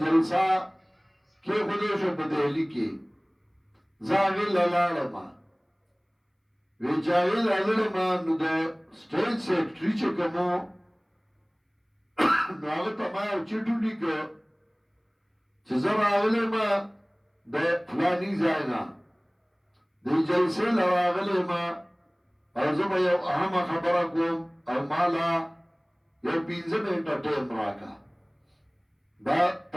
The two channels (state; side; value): identical; both; correlation 1.00